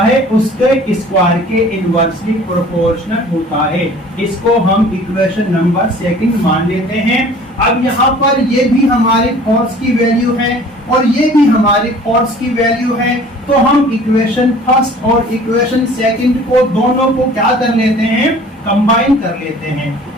है उसके स्क्वायर के इनवर्सली प्रोपोर्शनल होता है। इसको हम इक्वेशन नंबर सेकंड मान लेते हैं। अब यहाँ पर ये भी हमारे फोर्स की वैल्यू है और ये भी हमारे फोर्स की वैल्यू है, तो हम इक्वेशन फर्स्ट और इक्वेशन सेकंड को दोनों को क्या कर लेते हैं? कंबाइन कर लेते हैं।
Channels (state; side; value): normal; both; correlation 0.49